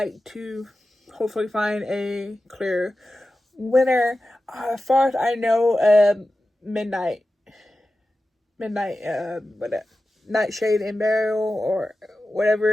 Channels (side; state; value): both; normal; correlation 0.93